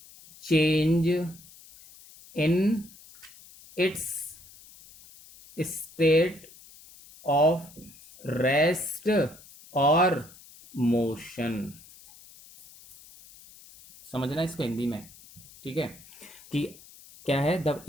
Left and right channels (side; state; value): left; noise; hiss, 22 dB below the sound